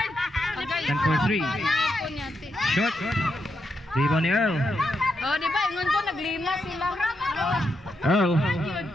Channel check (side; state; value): both; normal; correlation 0.83